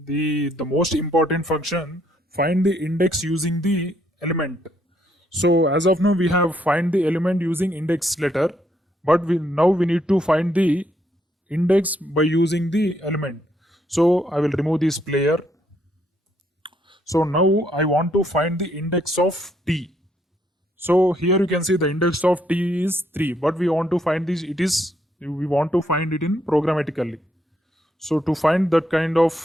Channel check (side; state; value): both; normal; correlation 0.72